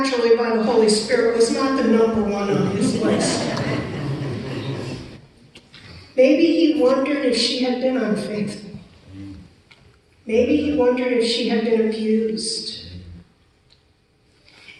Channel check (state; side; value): identical; both; correlation 1.00